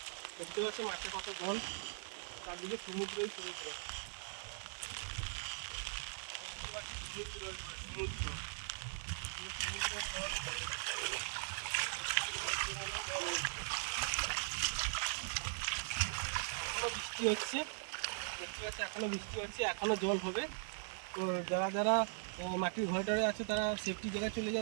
দেখতে পাচ্ছ মাঠে কত জল, চারদিকে সমুদ্রই সমুদ্র, সমুদ্র সমুদ্র। এখনো বৃষ্টি হচ্ছে, দেখতে পাচ্ছি এখনো বৃষ্টি হচ্ছে, এখনো জল হবে। তো যারা যারা মাটির ঘরে টরে আছে তারা সেফটি জায়গায় চলে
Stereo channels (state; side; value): silent; left; digital silence